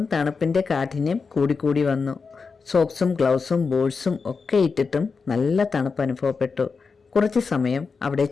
തണുപ്പിൻ്റെ കാഠിന്യം കൂടിക്കൂടി വന്നു. സോക്സും ഗ്ലൗസും ബോട്ട്സും ഒക്കെ ഇട്ടിട്ടും നല്ല തണുപ്പ് അനുഭവപ്പെട്ടു. കുറച്ച് സമയം അവിടെ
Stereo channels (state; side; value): quieter; right; 4.9 dB